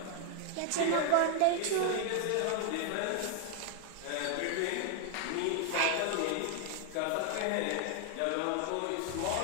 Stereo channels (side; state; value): both; different; correlation 0.00